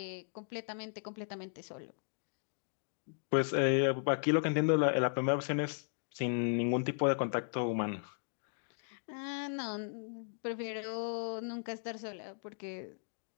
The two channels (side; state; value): right; silent; digital silence